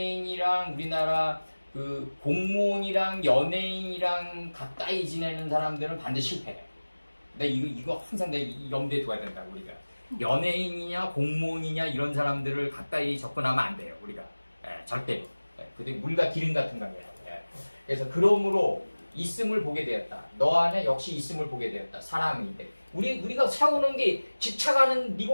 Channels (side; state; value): both; inverted; correlation -1.00